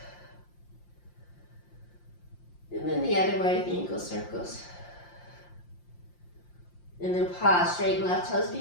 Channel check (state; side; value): late; right; 5.7 ms